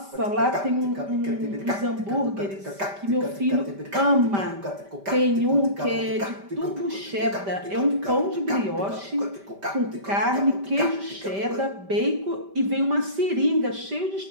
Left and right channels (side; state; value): left; late; 5.1 ms